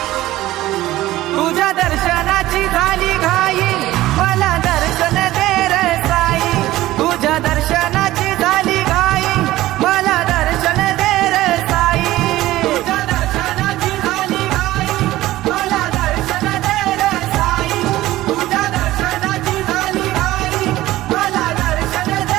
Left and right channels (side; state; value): left; quieter; 16.1 dB